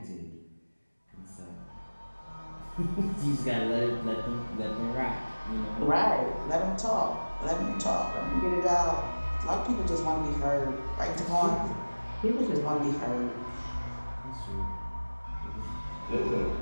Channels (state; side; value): inverted; both; correlation -1.00